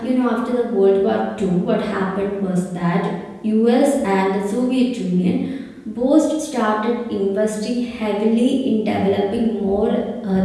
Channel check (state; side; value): identical; both; correlation 1.00